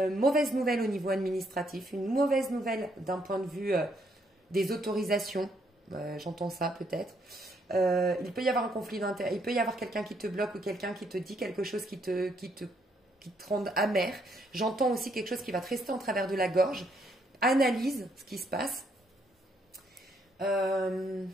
mauvaise nouvelle au niveau administratif, une mauvaise nouvelle d'un point de vue des autorisations, j'entends ça peut-être. Il peut y avoir un conflit d'intérêt, il peut y avoir quelqu'un qui te bloque ou quelqu'un qui te dit quelque chose qui te rende amer. J'entends aussi quelque chose qui va te rester en travers de la gorge. Analyse ce qui se passe.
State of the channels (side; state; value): both; normal; correlation 0.72